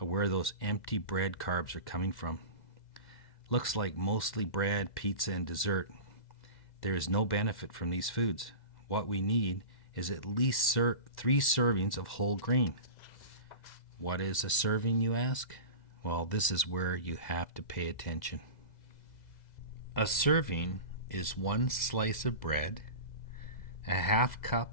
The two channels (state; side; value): late; right; 2.0 ms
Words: where those empty bread carbs are coming from. Looks like mostly bread, pizza, and dessert. There is no benefit from these foods. What we need is at least 3 servings of whole grain. What is a serving, you ask? Well, this is where you have to pay attention. A serving is 1 slice of bread, a 1/2